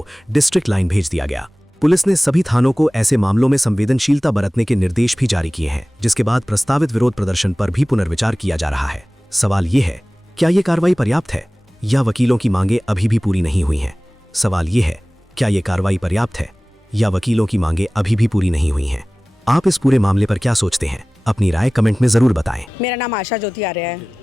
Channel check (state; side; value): normal; both; correlation 0.98